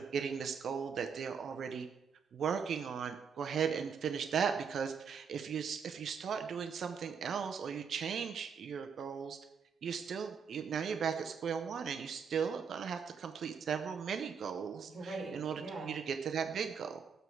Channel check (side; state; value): left; quieter; 6.5 dB